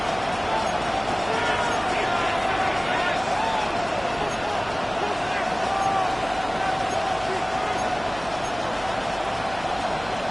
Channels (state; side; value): noise; right; hum, 17 dB below the sound